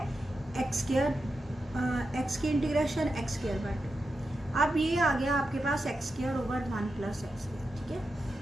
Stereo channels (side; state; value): both; normal; correlation 0.89